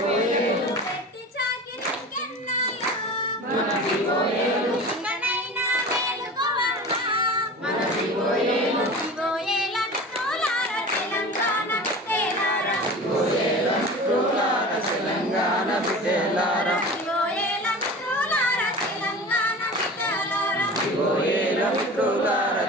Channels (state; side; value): normal; both; correlation 0.35